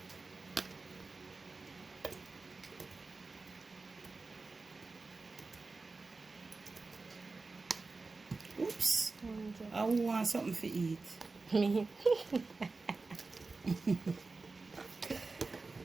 Oops. I want something to eat. Me.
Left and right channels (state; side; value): quieter; left; 3.8 dB